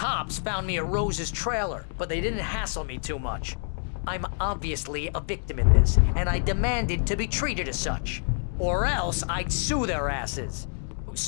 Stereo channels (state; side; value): silent; right; digital silence